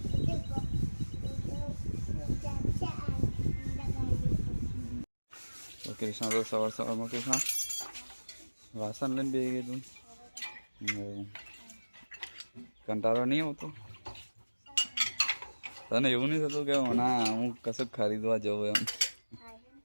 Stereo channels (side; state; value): both; inverted; correlation -1.00